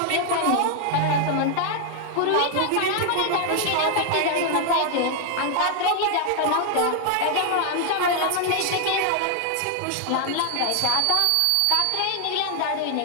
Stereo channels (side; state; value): both; different; correlation 0.00